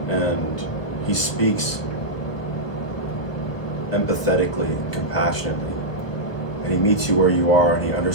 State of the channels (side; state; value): right; late; 1.1 ms